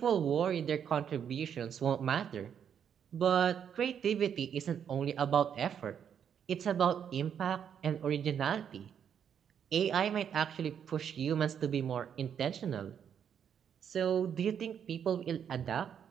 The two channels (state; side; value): quieter; left; 8.3 dB